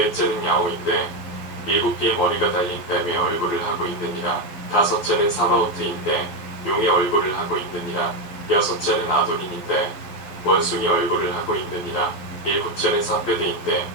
야오인데 일곱 개의 머리가 달린 뱀의 얼굴을 하고 있느니라. 다섯째는 사바오트인데 용의 얼굴을 하고 있느니라. 여섯째는 아도닌인데 원숭이 얼굴을 하고 있느니라. 일곱째는 사페드인데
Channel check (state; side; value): late; right; 12 ms